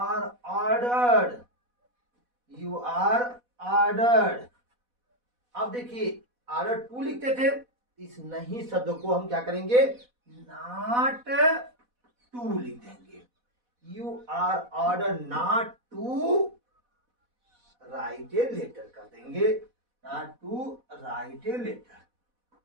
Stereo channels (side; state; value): left; late; 4.1 ms